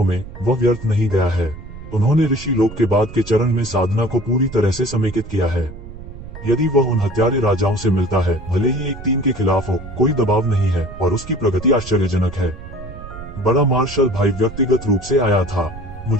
में वह व्यर्थ नहीं गया है। उन्होंने ऋषि लोक के बाद के चरण में साधना को पूरी तरह से समेकित किया है। यदि वह उन हत्यारे राजाओं से मिलता है, भले ही एक टीम के खिलाफ हो, कोई दबाव नहीं है और उसकी प्रगति आश्चर्यजनक है। बड़ा मार्शल भाई व्यक्तिगत रूप से आया था।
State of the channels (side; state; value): right; noise; rumble, 13 dB below the sound